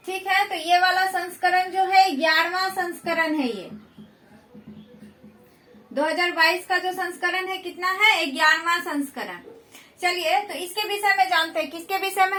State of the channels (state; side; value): identical; both; correlation 1.00